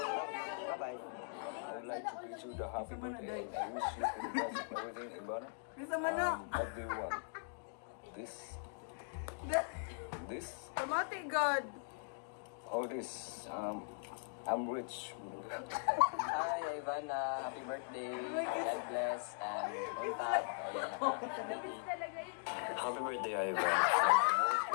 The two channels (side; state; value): right; silent; digital silence